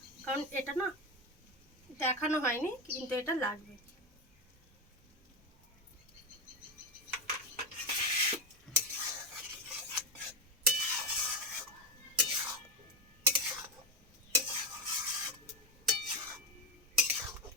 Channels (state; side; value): normal; both; correlation 0.14